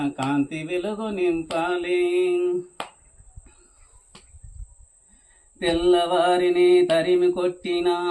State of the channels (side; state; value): both; identical; correlation 1.00